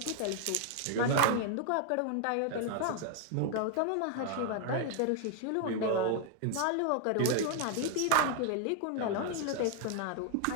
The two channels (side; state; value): both; different; correlation 0.00